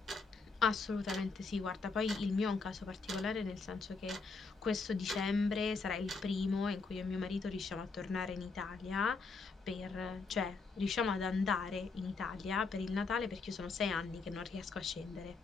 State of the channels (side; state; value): right; quieter; 4.3 dB